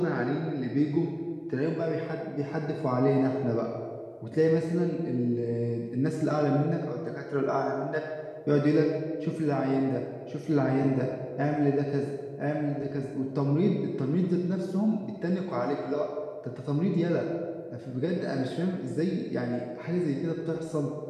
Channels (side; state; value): both; identical; correlation 1.00